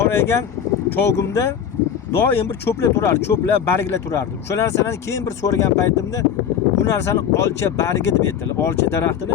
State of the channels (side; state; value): right; quieter; 8.3 dB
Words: cho'g'imda doim bir cho'plar turar, cho'plar, barglar turardi. O'sha narsalarni keyin bir so'ragan paytimda bu narsani olcha bargi deb aytdilar. Olcha daraxtini